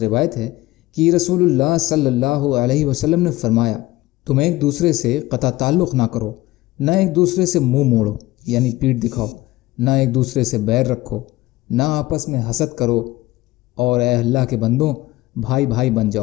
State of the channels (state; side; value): quieter; right; 18.3 dB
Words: روایت ہے کہ رسول اللہ صلی اللہ علیہ وسلم نے فرمایا، تم ایک دوسرے سے قطع تعلق نہ کرو، نہ ایک دوسرے سے منہ موڑو یعنی پیٹھ دکھاؤ، نہ ایک دوسرے سے بیر رکھو، نہ آپس میں حسد کرو، اور اے اللہ کے بندوں، بھائی بھائی بن